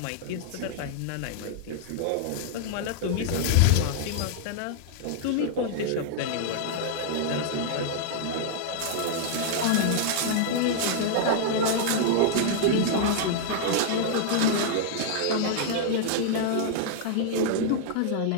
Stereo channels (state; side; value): different; both; correlation -0.01